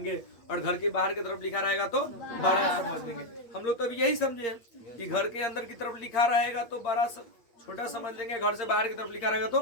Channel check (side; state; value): right; late; 8.7 ms